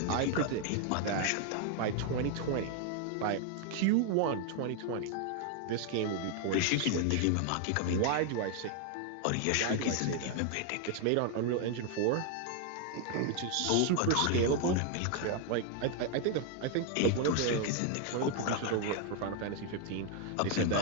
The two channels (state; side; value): different; both; correlation 0.00